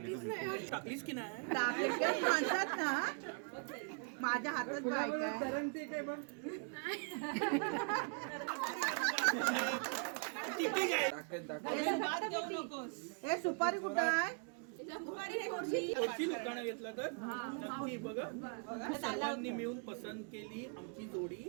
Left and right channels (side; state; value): left; quieter; 39.8 dB